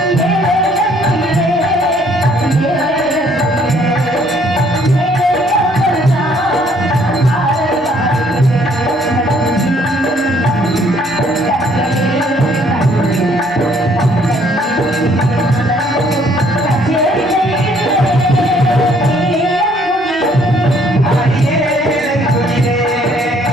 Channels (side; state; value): both; normal; correlation 0.63